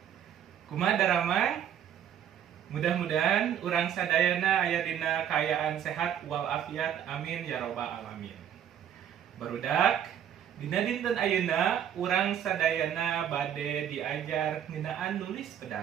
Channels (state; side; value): quieter; left; 9.5 dB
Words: Kumaha daramang? Mudah-mudahan urang sadayana aya dina kaayaan sehat walafiat, amin ya robbal alamin. Barudak, dina dinten ayeuna urang sadayana bade diajar ngeunaan nulis